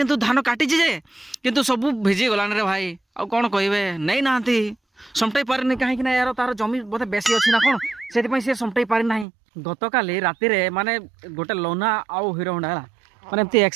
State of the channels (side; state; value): left; drops out; at 9.2 s